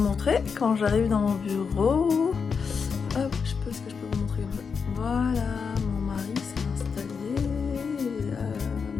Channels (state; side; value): quieter; right; 5.8 dB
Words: quand j'arrive dans mon bureau. Hop, est-ce que je peux vous montrer comme ça? Voilà, mon mari s'est installé,